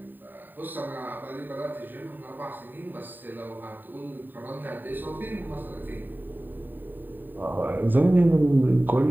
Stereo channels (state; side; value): late; left; 0.091 ms